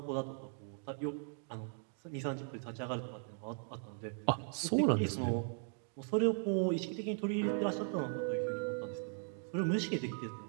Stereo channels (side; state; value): left; silent; 52 dB below the other